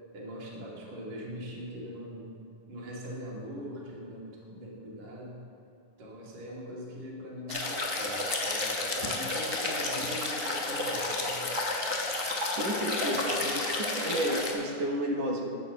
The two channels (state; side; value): late; left; 9.7 ms